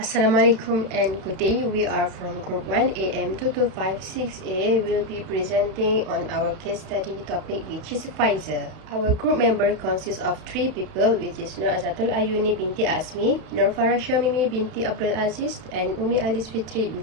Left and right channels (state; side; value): late; left; 31 ms